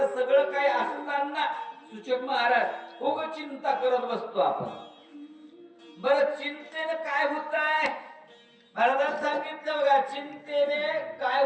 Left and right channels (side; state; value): both; identical; correlation 1.00